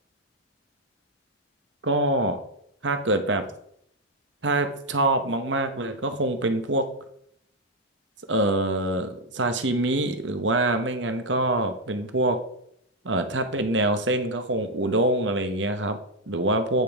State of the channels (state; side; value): normal; both; correlation 0.01